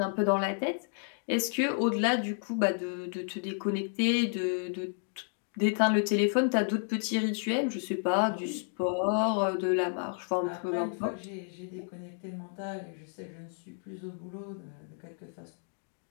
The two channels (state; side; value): silent; right; 57 dB below the other